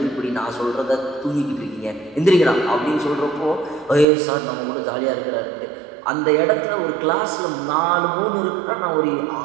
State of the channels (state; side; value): drops out; left; at 4.0 s